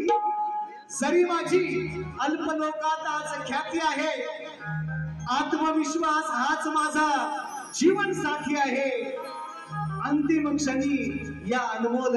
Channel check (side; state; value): both; identical; correlation 1.00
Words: जरी माझी अल्पलोकात आज ख्याती आहे आत्मविश्वास हाच माझा जीवन साथी आहे अंतिम क्षणी या अनमोल